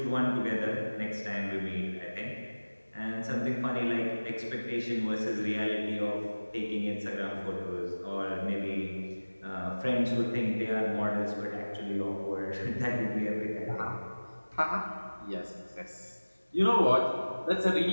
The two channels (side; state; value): both; inverted; correlation -1.00